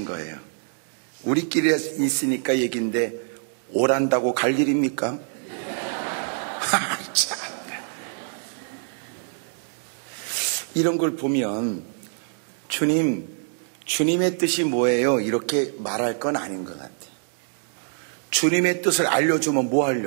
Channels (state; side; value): silent; left; digital silence